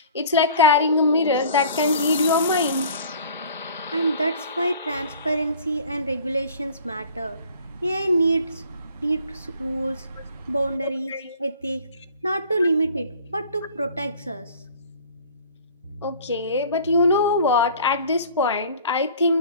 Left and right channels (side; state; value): both; inverted; correlation -0.48